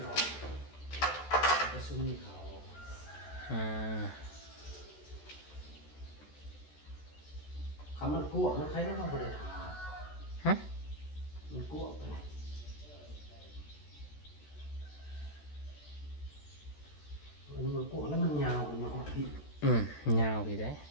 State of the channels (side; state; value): right; late; 14 ms